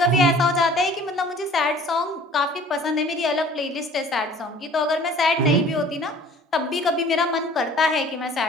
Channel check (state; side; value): normal; both; correlation 0.50